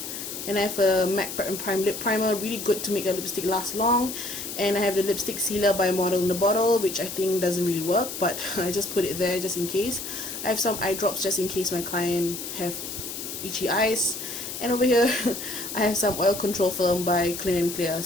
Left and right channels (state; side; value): noise; left; hiss, 7 dB below the sound